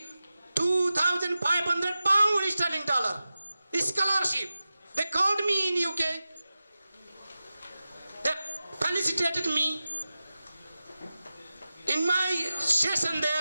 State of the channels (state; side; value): inverted; both; correlation -0.94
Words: £2,500 sterling scholarship. They called me in UK. They felicitated me. In my session